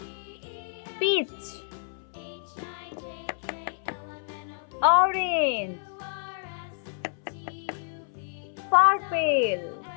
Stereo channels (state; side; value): silent; right; 59 dB below the other